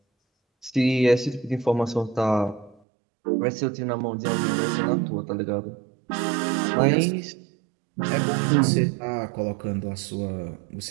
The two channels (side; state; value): left; drops out; at 2.8 s